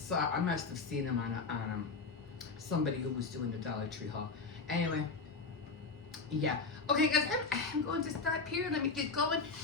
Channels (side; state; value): right; quieter; 4.3 dB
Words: seen them on somebody who was doing the Dollar Tree haul. Anyway, yeah. Okay, guys, I'm going to stop here. Let me get going.